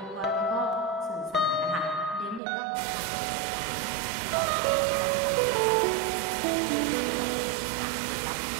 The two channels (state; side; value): drops out; left; at 2.4 s